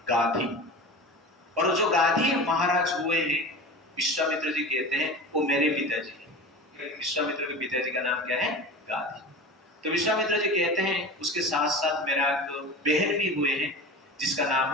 गाधी। और जो गाधी महाराज हुए हैं, विश्वामित्र जी कहते हैं वो मेरे पिताजी हैं। विश्वामित्र के पिताजी का नाम क्या है? गाधी। तो विश्वामित्र जी कहते हैं उसके साथ साथ मेरा एक बहन भी हुए हैं जिसका नाम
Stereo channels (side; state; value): both; normal; correlation 0.32